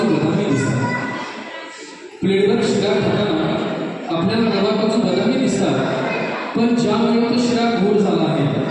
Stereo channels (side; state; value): both; identical; correlation 1.00